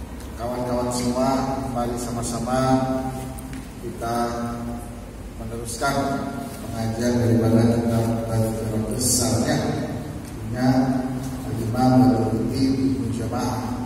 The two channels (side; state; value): both; identical; correlation 1.00